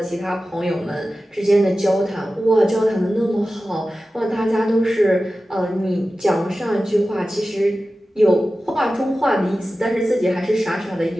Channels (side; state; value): both; normal; correlation 0.94